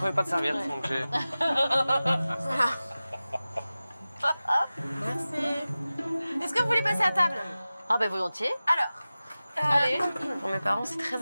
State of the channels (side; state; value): both; inverted; correlation -0.97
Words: pas de serviette, Ouais. donc j'ai... Voilà. Merci. Est-ce que vous voulez passer à table? Ah ben volontiers. Alors, Allez. Pour mes parents, c'est très